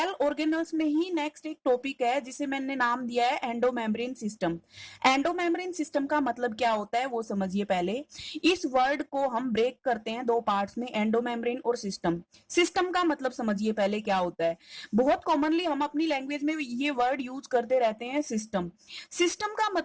ऑर्गेनल्स में ही नेक्स्ट एक टॉपिक है जिसे मैंने नाम दिया है एंडोमेम्ब्रेन सिस्टम। एंडोमेम्ब्रेन सिस्टम का मतलब क्या होता है वो समझिए पहले। इस वर्ड को हम ब्रेक करते हैं दो पार्ट्स में, एंडोमेम्ब्रेन और सिस्टम। सिस्टम का मतलब समझिए पहले क्या होता है। बहुत कॉमनली हम अपनी लैंग्वेज में ये वर्ड यूज करते रहते हैं, सिस्टम। सिस्टम का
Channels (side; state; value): both; identical; correlation 1.00